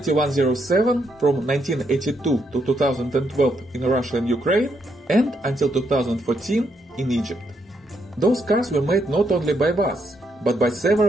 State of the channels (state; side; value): normal; both; correlation 0.76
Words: from 1982 to 2012 in Russia and Ukraine, and until 2014 in Egypt. Those cars were made not only by VAZ, but by